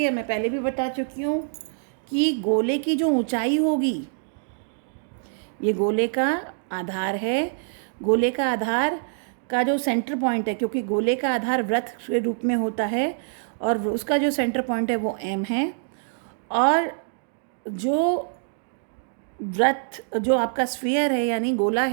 मैं पहले भी बता चुकी हूँ कि गोले की जो ऊंचाई होगी, ये गोले का आधार है, गोले का आधार का जो सेंटर पॉइंट है, क्योंकि गोले का आधार वृत्त के रूप में होता है और उसका जो सेंटर पॉइंट है वो M है, और जो वृत्त जो आपका स्फीयर है यानी गोला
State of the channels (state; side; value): silent; left; digital silence